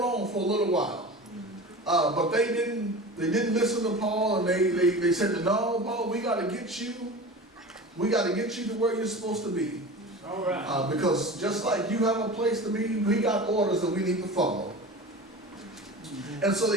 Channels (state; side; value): normal; both; correlation 0.34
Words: for a little while. But they didn't listen to Paul, and they said, no, Paul, we got to get you to where you're supposed to be. All right. Because just like you have a place to be, we got orders that we need to follow. And so